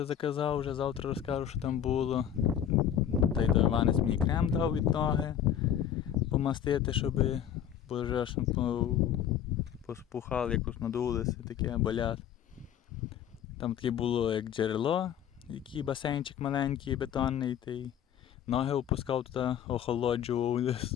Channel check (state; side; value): quieter; right; 9.8 dB